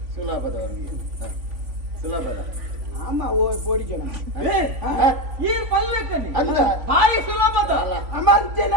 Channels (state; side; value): late; left; 3.5 ms